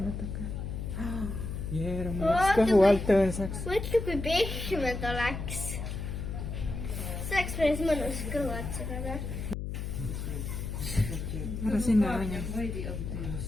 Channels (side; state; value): left; noise; hum, 5 dB below the sound